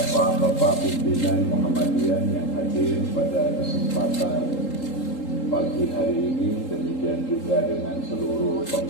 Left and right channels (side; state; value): right; late; 3.8 ms